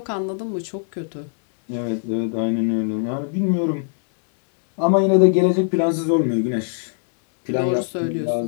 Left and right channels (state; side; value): silent; right; 64 dB below the other